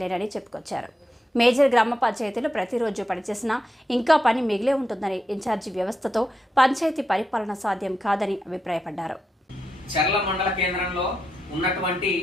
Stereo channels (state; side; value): normal; both; correlation 0.86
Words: చెప్పుకొచ్చారు. మేజర్ గ్రామ పంచాయతీలో ప్రతిరోజు పనిచేసినా ఇంకా పని మిగిలే ఉంటుందని, ఇన్ఛార్జి వ్యవస్థతో పంచాయతీ పరిపాలన సాధ్యం కాదని అభిప్రాయపడ్డారు. చెర్ల మండల కేంద్రంలో ఉన్నటువంటి